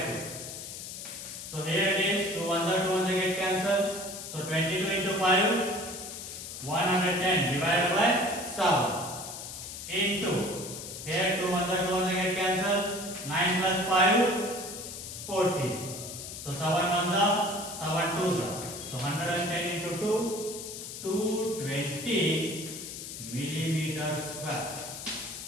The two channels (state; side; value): noise; left; hiss, 9 dB below the sound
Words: So here it is 2 ones are 2 ones get cancelled. So 22 into 5, 110 divided by 7 into, here 2 ones are 2 ones get cancelled. 9 plus 5, 14. So 7 ones are 7 twos are. So 110 into 2, 220 millimeters square.